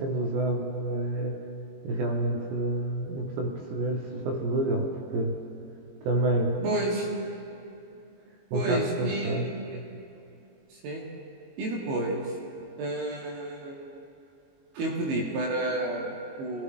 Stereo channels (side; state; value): left; late; 22 ms